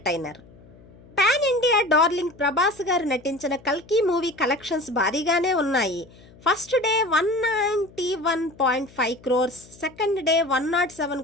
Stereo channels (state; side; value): noise; left; hum, 24 dB below the sound